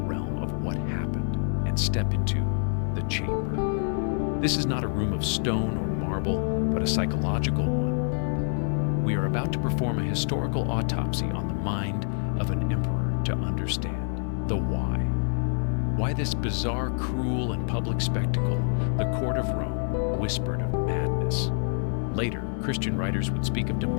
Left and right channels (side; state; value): right; silent; 57 dB below the other